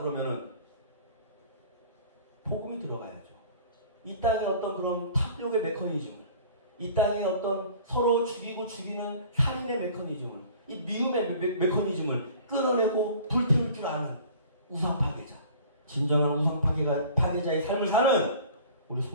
복음이 들어가야죠. 이 땅의 어떤 그런 탑력의 메커니즘을, 이 땅의 어떤 서로 죽이고 죽이는 살인의 메커니즘을, 이 미움의 메커니즘을 끌어내고 불태울 줄 아는 우상 파괴자, 진정한 우상 파괴자의 삶을 사는 우리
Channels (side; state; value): both; inverted; correlation -0.47